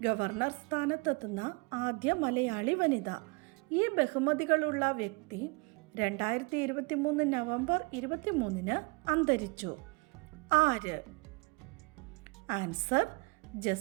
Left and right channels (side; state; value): left; quieter; 29.1 dB